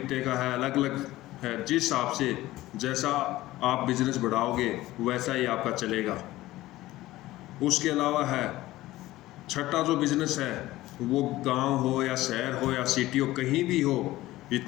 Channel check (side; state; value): right; quieter; 16.8 dB